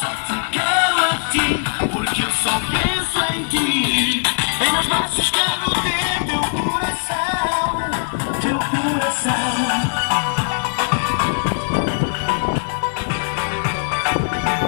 te quero a ti, porque eu só penso em ti. Em meus braços quero ter teu coração, teu coração.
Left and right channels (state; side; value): silent; right; digital silence